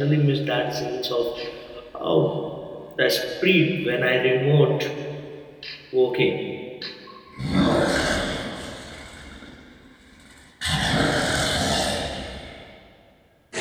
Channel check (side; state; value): both; identical; correlation 1.00